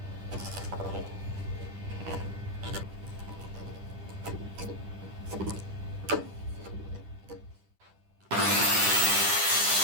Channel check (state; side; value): late; left; 10 ms